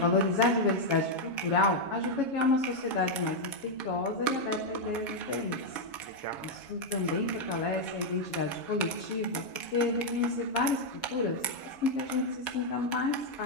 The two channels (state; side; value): late; right; 7.2 ms